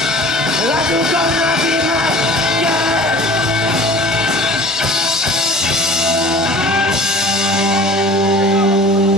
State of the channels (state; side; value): normal; both; correlation 0.43